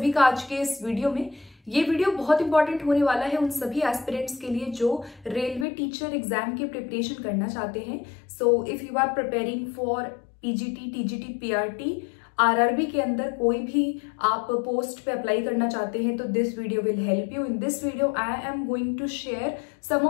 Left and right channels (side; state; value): right; drops out; at 5.7 s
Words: का आज के इस वीडियो में। ये वीडियो बहुत इंपॉर्टेंट होने वाला है उन सभी एस्पिरेंट्स के लिए जो रेलवे टीचर एग्जाम की प्रिपरेशन करना चाहते हैं। So if you are preparing for PGT, TGT, PRT, RRB के अंदर कोई भी आप पोस्ट पे अप्लाई करना चाहते हैं तो this video will help you. In this video I am going to share some